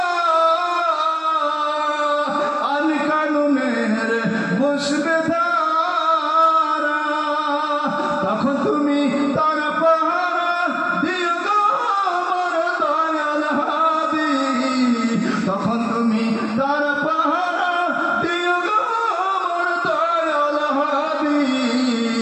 আইন কানুনের পুষ্পে দ্বারা তখন তুমি তার পাহারা দিও গো আমার দয়াল হাদি তখন তুমি তার পাহারা দিও গো আমার দয়াল হাদি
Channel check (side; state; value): both; identical; correlation 1.00